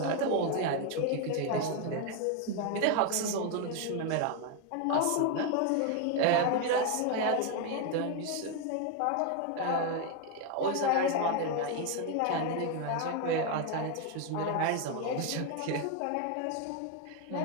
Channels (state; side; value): different; both; correlation 0.01